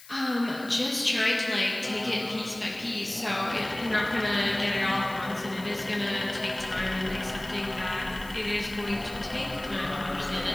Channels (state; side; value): noise; left; hiss, 19 dB below the sound